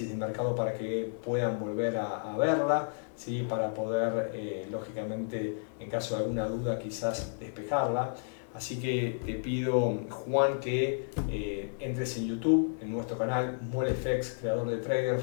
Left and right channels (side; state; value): right; silent; digital silence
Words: de mercado para que puedan volver a verla, ¿sí?, para poder, lógicamente, en caso de alguna duda, quizás despejarla. Así que te pido, Juan, que entres en YouTube, en nuestro canal MoleFX, creador de